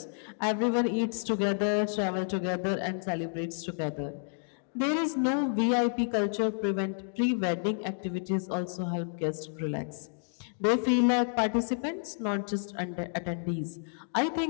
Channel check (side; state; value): right; silent; digital silence